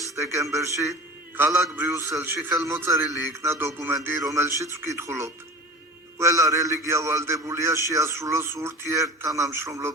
დეკემბერში ქალაქ ბრიუსელში ხელმოწერილი იქნა დოკუმენტი, რომელშიც ვკითხულობთ. ყველა რელიგია ვალდებულია შეასრულოს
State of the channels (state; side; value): normal; both; correlation 0.36